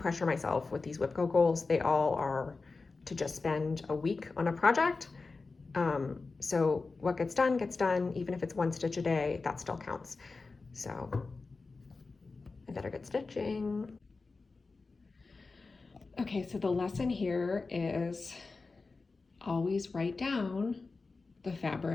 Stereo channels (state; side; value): quieter; right; 4.0 dB